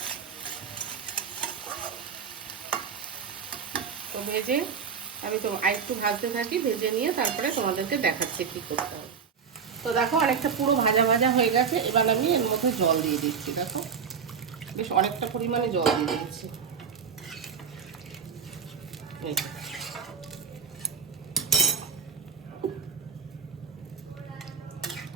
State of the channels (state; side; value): quieter; left; 6.5 dB